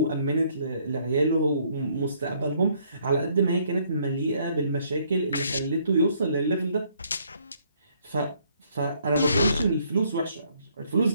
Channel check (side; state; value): both; inverted; correlation -0.67